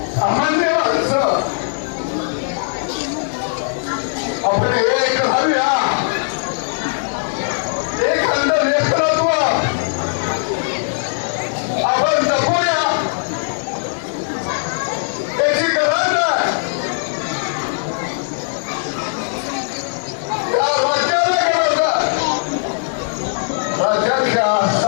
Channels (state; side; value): silent; right; digital silence